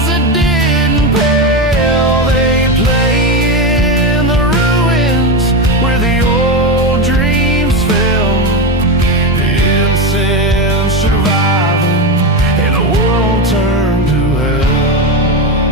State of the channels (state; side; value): normal; both; correlation 0.15